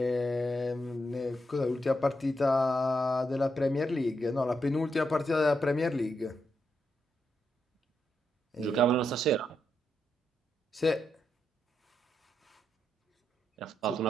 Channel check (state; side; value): normal; both; correlation 0.82